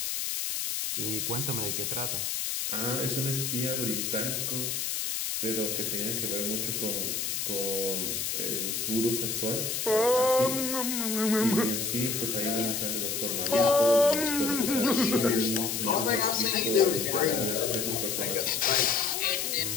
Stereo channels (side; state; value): left; noise; hiss, 1 dB below the sound